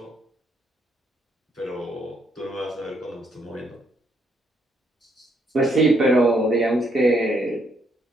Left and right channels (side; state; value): both; normal; correlation 0.73